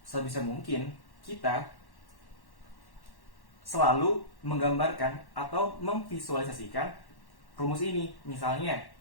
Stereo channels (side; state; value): right; late; 1.1 ms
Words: sebisa mungkin kita selalu menggambarkan atau memvisualisasikan rumus ini. Misalnya